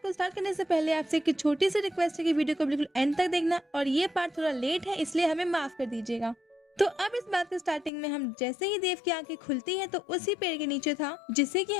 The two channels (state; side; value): drops out; right; at 7.9 s